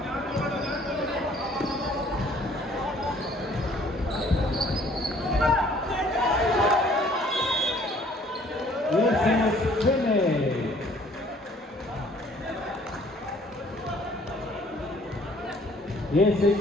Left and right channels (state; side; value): normal; both; correlation 0.58